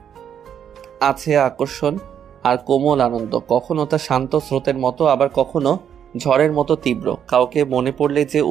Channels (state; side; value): quieter; left; 8.8 dB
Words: আছে আকর্ষণ আর কোমল আনন্দ। কখনো তা শান্ত স্রোতের মতো, আবার কখনো ঝড়ের মতো তীব্র। কাউকে মনে পড়লে যে